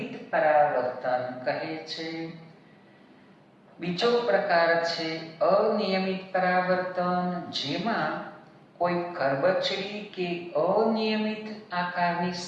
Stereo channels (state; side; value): identical; both; correlation 1.00